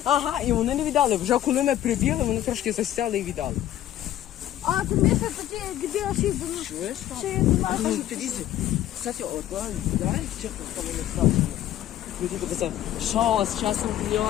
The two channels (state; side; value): quieter; right; 12.5 dB